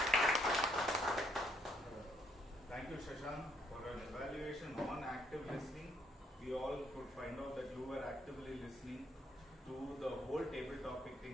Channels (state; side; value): normal; both; correlation 0.69